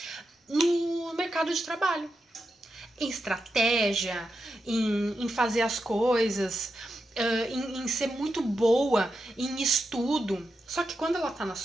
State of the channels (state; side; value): normal; both; correlation 0.87